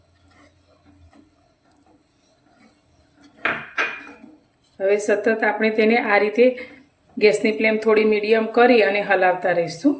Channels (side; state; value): both; identical; correlation 1.00